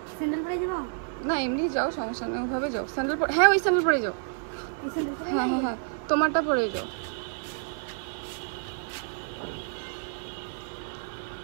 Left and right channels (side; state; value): left; silent; 59 dB below the other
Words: স্যান্ডেল পরে যাবো না এমনি যাও, সমস্যা নেই, ওভাবে যাও। স্যান্ডেল পরে, হ্যাঁ ওই স্যান্ডেল পরে যাও। হ্যাঁ হ্যাঁ হ্যাঁ তোমারটা পরে যাও।